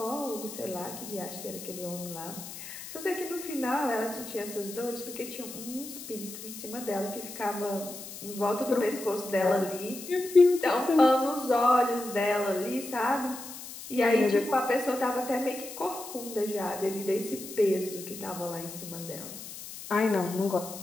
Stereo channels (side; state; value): left; noise; hiss, 12 dB below the sound